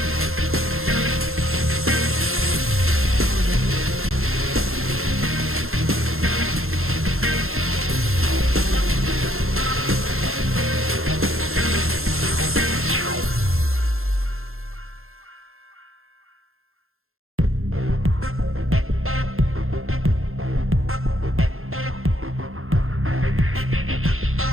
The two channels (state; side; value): late; left; 0.61 ms